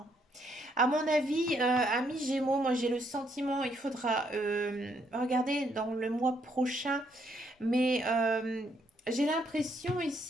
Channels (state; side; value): normal; both; correlation 0.72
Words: À mon avis, amis Gémeaux, moi j'ai le sentiment, il faudra regarder dans le mois prochain, mais j'ai l'impression